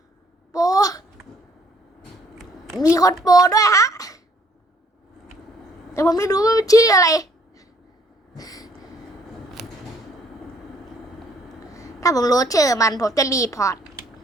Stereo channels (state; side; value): normal; both; correlation 0.64